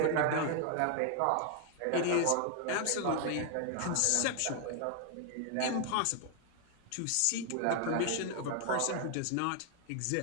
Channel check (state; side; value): different; both; correlation 0.00